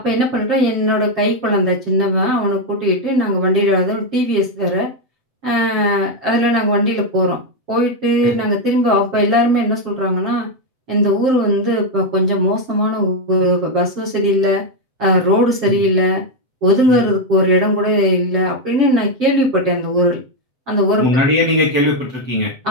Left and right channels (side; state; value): left; late; 7.9 ms